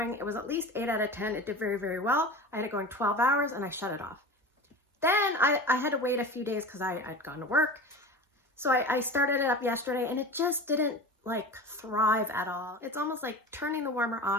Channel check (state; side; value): normal; both; correlation 0.33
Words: it was at least 8 out of 10. It did very, very well. I had it going 12 hours and I shut it off. Then I had to wait a few days because I'd gone to work. So I started it up yesterday and it just didn't like thrive at all. It's almost like turning the warmer